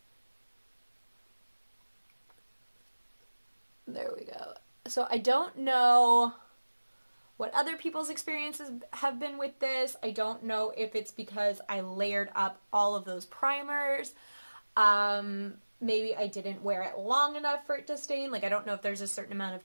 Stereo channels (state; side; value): inverted; both; correlation -1.00